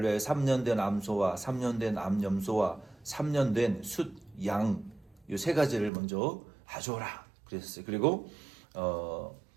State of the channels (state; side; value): drops out; left; at 5.9 s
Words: 위하여 3년 된 암소와 3년 된 암염소와 3년 된 숫양 이 세 가지를 먼저 가져오라 그랬어요. 그리고